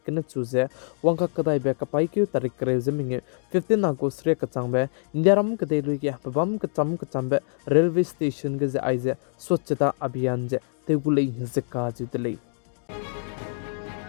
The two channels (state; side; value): silent; right; digital silence